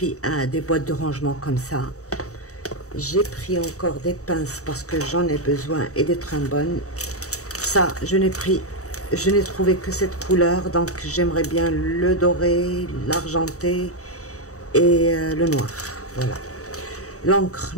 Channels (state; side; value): late; right; 0.65 ms